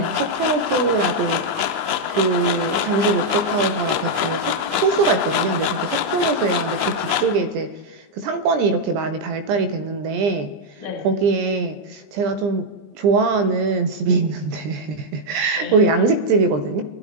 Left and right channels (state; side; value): late; left; 19 ms